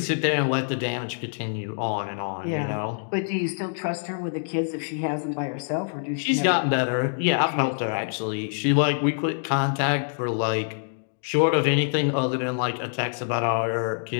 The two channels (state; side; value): silent; right; digital silence